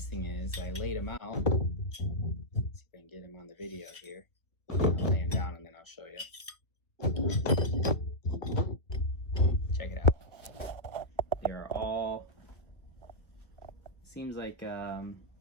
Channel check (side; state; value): right; late; 1.2 ms